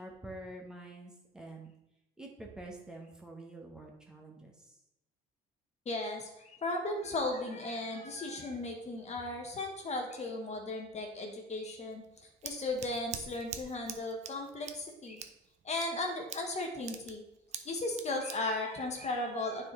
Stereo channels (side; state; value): both; normal; correlation 0.26